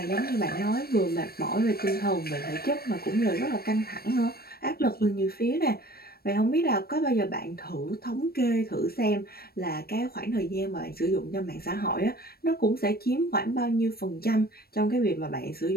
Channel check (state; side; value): late; right; 0.44 ms